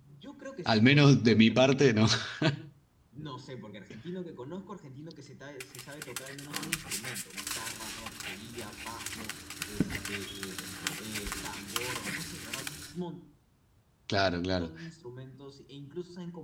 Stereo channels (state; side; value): identical; both; correlation 1.00